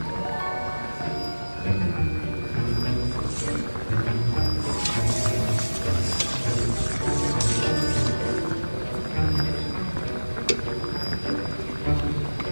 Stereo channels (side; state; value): both; inverted; correlation -1.00